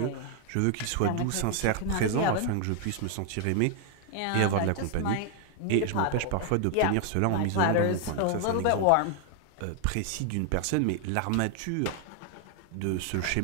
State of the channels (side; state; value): both; different; correlation 0.00